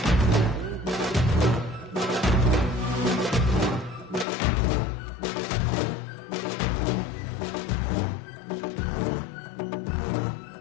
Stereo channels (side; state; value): right; drops out; at 4.2 s